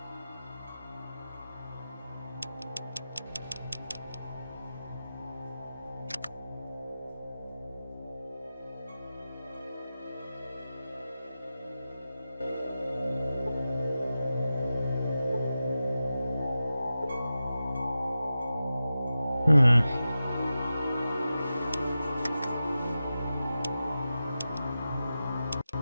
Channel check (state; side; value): inverted; both; correlation -0.93